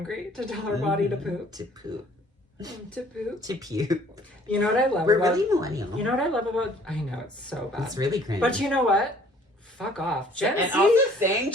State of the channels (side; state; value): both; normal; correlation 0.56